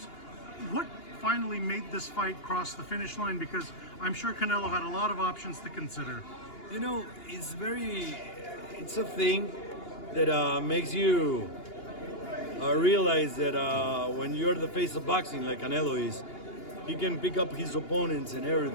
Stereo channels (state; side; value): late; right; 2.8 ms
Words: What finally made this fight cross the finish line? Because I'm sure Canelo had a lot of options to consider. You know, it's a thing that makes you realize that when you're the face of boxing like Canelo is, he can pick up his opponents and